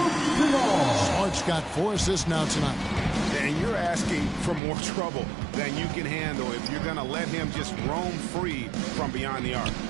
Smart's got 4 assists now tonight. And you're asking for more trouble than you can handle if you're going to let him just roam free from beyond the arc.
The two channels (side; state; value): left; drops out; at 4.6 s